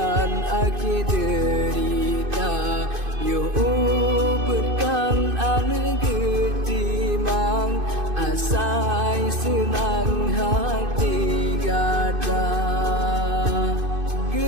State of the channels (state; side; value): late; left; 2.5 ms